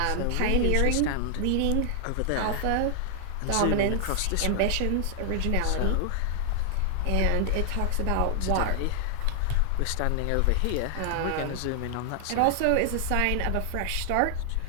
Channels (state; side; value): different; both; correlation 0.00